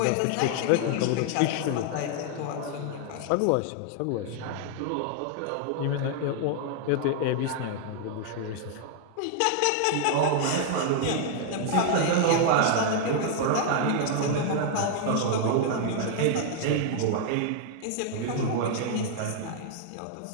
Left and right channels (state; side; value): different; both; correlation 0.00